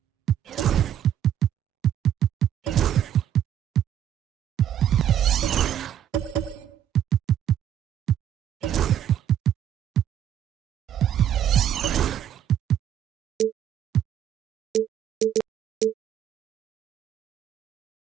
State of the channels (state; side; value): quieter; left; 10.3 dB